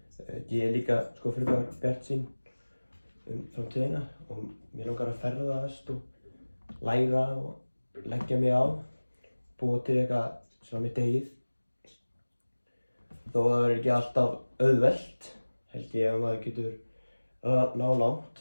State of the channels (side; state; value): both; inverted; correlation -1.00